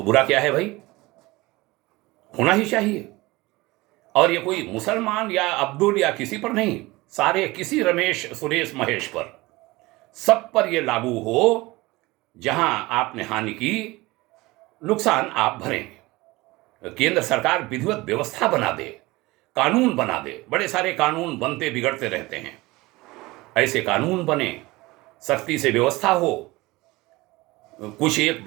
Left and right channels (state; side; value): quieter; left; 21.2 dB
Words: बुरा क्या है भाई? होना ही चाहिए। और ये कोई मुसलमान या अब्दुल या किसी पर नहीं, सारे किसी रमेश, सुरेश, महेश पर, सब पर यह लागू हो। जहां आपने हानि की, नुकसान आप भरेंगे। केंद्र सरकार विधिवत व्यवस्था बना दे, कानून बना दे। बड़े सारे कानून बनते बिगड़ते रहते हैं, ऐसे कानून बने, सख्ती से व्यवस्था हो। कुछ एक